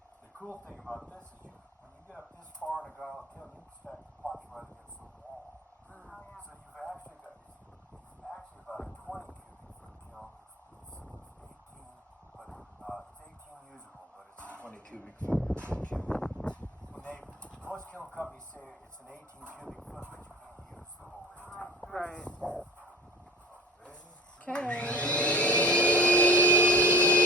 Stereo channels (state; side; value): normal; both; correlation 0.41